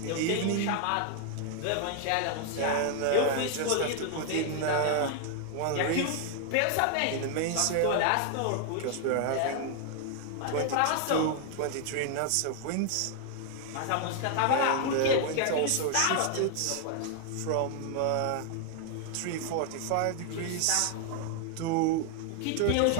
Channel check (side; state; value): both; different; correlation 0.00